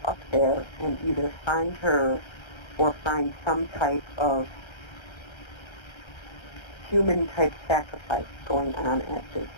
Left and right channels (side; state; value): right; late; 1.3 ms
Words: up there and either find her or find some type of human-type sacrifice going on at this